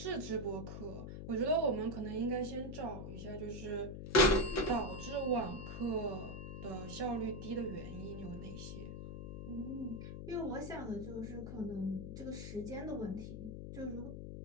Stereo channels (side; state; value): left; noise; hum, 7 dB below the sound